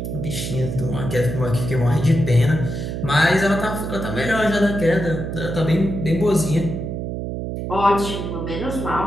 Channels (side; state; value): right; noise; hum, 5 dB below the sound